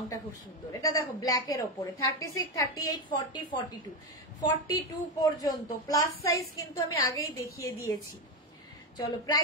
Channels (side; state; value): both; normal; correlation 0.12